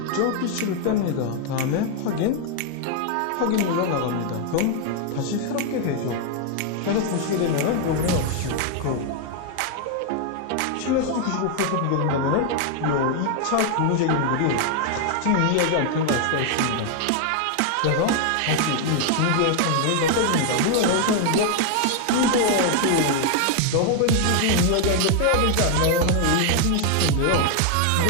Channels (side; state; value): both; different; correlation 0.00